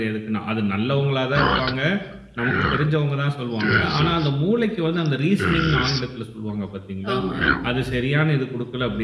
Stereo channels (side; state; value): both; identical; correlation 1.00